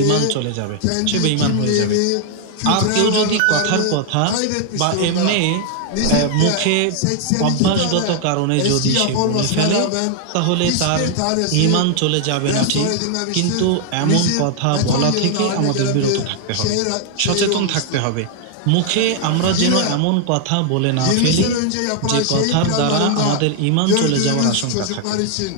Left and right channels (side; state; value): both; different; correlation 0.00